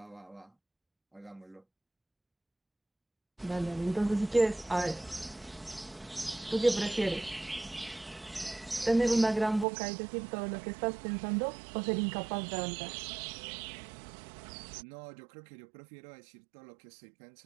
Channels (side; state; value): left; drops out; at 9.7 s